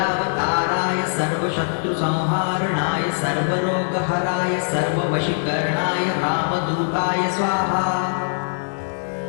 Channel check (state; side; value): silent; right; 64 dB below the other